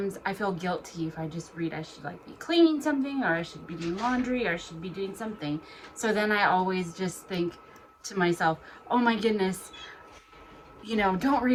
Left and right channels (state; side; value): identical; both; correlation 1.00